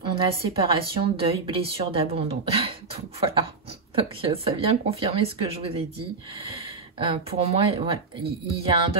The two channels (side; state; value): left; quieter; 4.2 dB